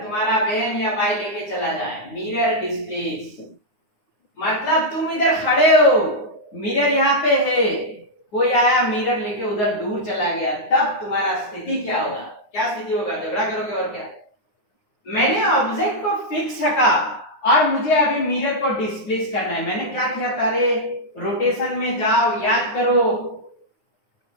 तुम्हारा बहन या भाई लेके चला जाए। मिरर डिस्प्लेस मतलब तुम इधर खड़े हो, मिरर यहाँ पे है, कोई आया मिरर लेके उधर दूर चला गया, तब तुम्हारा स्थिति क्या होगा? क्या स्थिति होगा? झगड़ा करोगे और क्या। मैंने ऑब्जेक्ट को फिक्स रखा और मुझे अभी मिरर को डिस्प्लेस करना है। मैंने क्या किया था रे, रोटेशन में जाओ, याद करो,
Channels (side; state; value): right; late; 9.7 ms